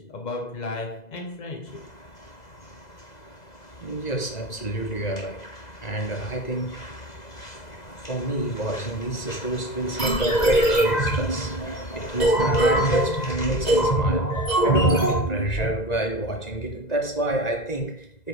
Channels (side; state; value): right; late; 1.9 ms